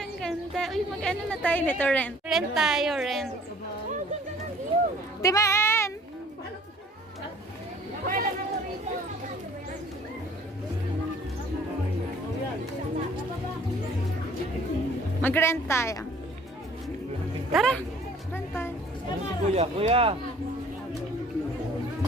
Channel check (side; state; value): both; normal; correlation 0.54